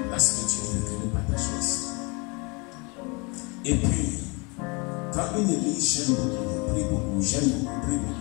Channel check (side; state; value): right; quieter; 29.9 dB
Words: là c'est que Dieu veut que nous partageons ici. Et puis, quand une église j'aime beaucoup, prie beaucoup, j'aime beaucoup, prie